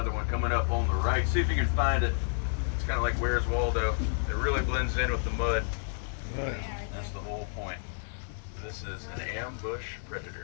one coming up on the right. See if you can find it. It's kind of like Where's Waldo. It really blends in with the mud. That's the whole point. This is an ambush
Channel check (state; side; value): silent; right; 58 dB below the other